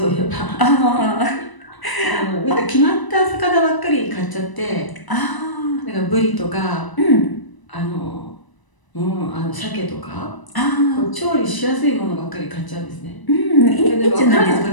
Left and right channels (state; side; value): late; right; 1.0 ms